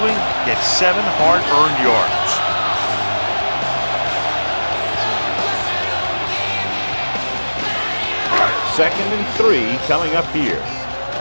gets 7 hard-earned yards. Second and 3 coming up here.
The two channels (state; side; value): inverted; both; correlation -1.00